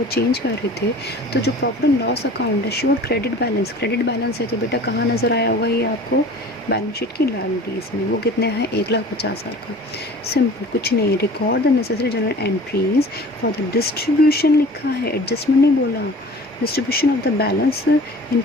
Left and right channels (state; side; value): normal; both; correlation 0.43